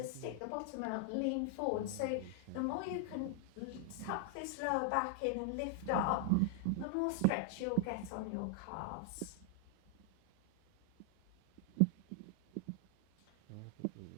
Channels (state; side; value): different; both; correlation 0.00